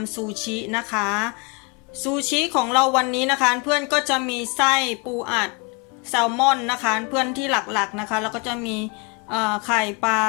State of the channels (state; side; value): quieter; right; 30.0 dB